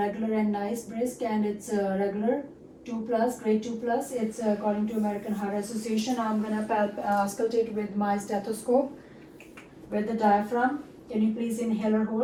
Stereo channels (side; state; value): both; identical; correlation 1.00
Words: and nice, brisk, and it's regular 2+, grade 2+. It's according to American Heart Association. I'm gonna auscultate with my stethoscope with the diaphragm. Can you please inhale or